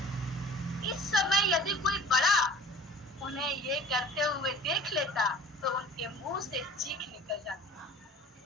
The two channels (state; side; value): normal; both; correlation 0.45